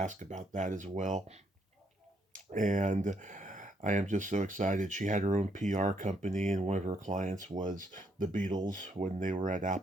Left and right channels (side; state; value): both; normal; correlation 0.73